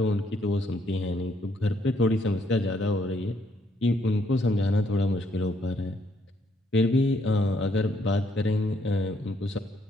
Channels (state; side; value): normal; both; correlation 0.71